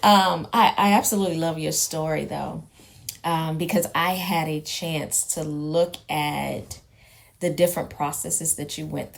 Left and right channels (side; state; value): both; identical; correlation 1.00